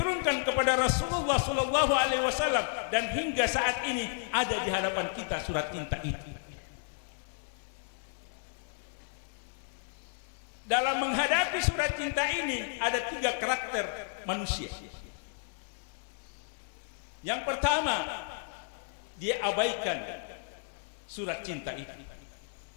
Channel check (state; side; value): silent; right; digital silence